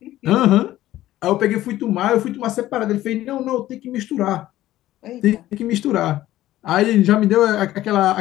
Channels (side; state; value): right; quieter; 14.7 dB